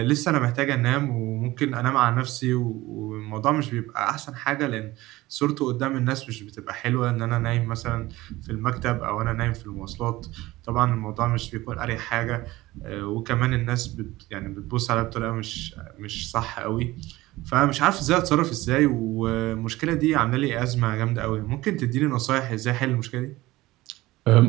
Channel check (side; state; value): left; quieter; 18.5 dB